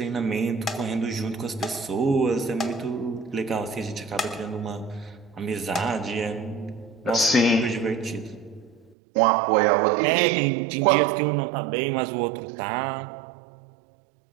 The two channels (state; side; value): drops out; left; at 9.0 s